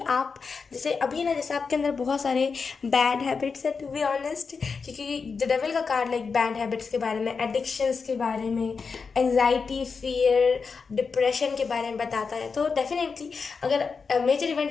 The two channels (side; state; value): right; quieter; 5.2 dB